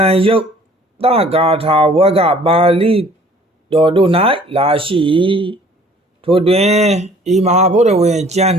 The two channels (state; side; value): normal; both; correlation 0.53